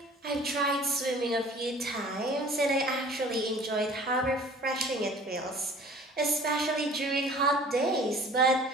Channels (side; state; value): both; normal; correlation 0.48